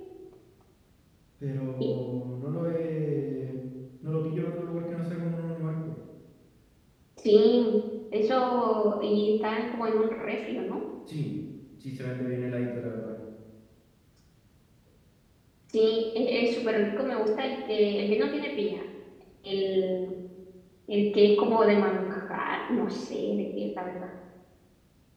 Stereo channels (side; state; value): both; identical; correlation 1.00